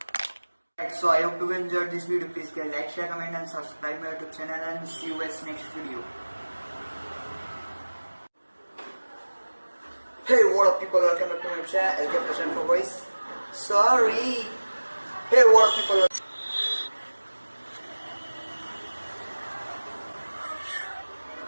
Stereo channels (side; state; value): both; inverted; correlation -1.00